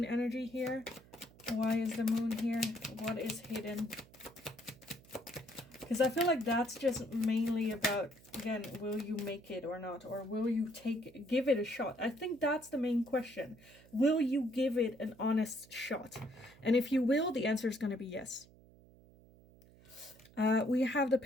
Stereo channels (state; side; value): noise; right; hum, 24 dB below the sound